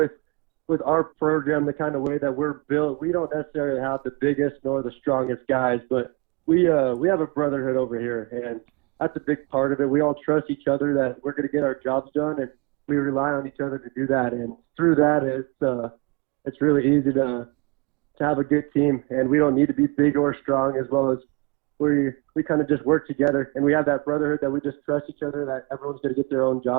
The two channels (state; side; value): quieter; left; 29.9 dB